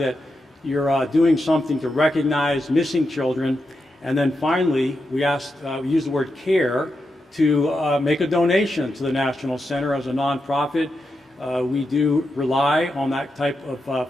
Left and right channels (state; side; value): normal; both; correlation 0.86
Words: you're doing something to recognize missing children. And then finally, we use the word care to make a donation to the National Center as a nonprofit. We do rely on that type of